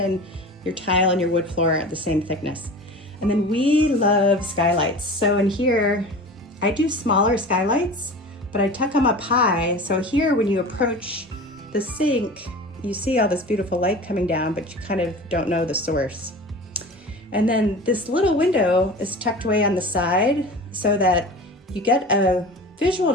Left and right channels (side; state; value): both; normal; correlation 0.35